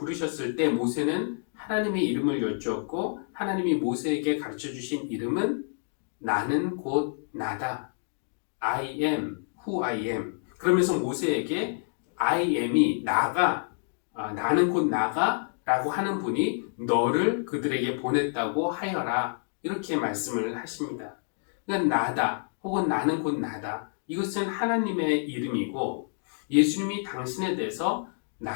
때 모세는 하나님의 이름을 여쭈었고 하나님이 모세에게 가르쳐주신 이름은 나는 곧 나다. I am who I am. 그러면서 모세에게 I am이 나가, 나는 곧 나가 라고 하는 분이 너를 그들에게 보냈다고 하여라. 이렇게 말씀을 하십니다. 그러니까 나다 혹은 나는 곧 나다. 이것은 하나님의 이름이고 예수님이 당신에 대해서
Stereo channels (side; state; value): right; silent; digital silence